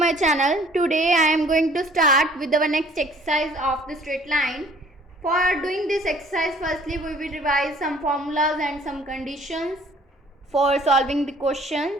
channel. Today I am going to start with our next exercise of the straight line. For doing this exercise, firstly we will revise some formulas and some conditions for solving the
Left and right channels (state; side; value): normal; both; correlation 0.54